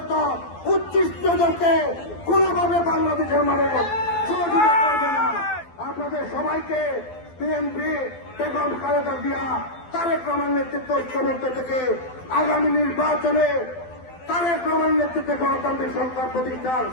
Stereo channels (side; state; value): right; late; 12 ms